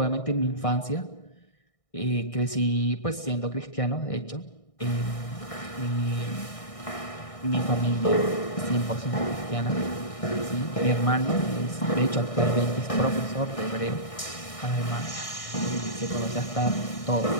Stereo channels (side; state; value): right; late; 1.6 ms